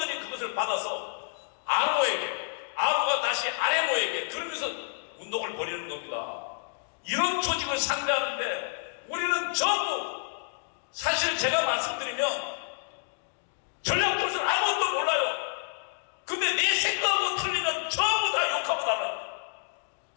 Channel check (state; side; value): silent; right; digital silence